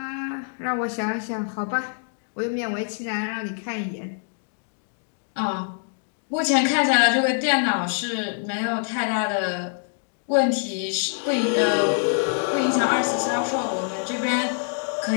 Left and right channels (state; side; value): silent; right; digital silence